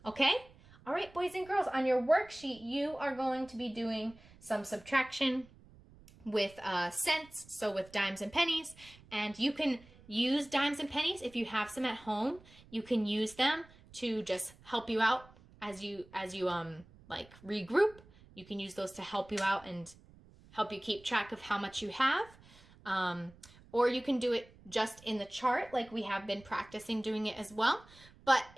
Okay? All right, boys and girls, on your worksheet, you are going to be doing some subtraction with cents, so with dimes and pennies, and you can use dimes and pennies if you have some at home. You can use them to just help you out as you like regroup. You can use those to help you out and help you keep track of how much you have. or you can do it just in the chart like we have been practicing doing it as well. But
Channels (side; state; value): right; noise; rumble, 24 dB below the sound